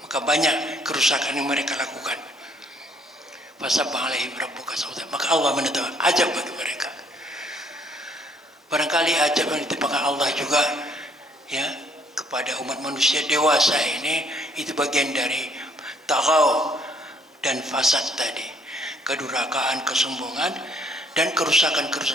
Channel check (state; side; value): normal; both; correlation 0.64